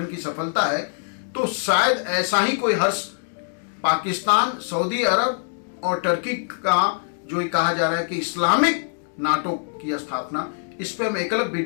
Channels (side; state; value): right; silent; digital silence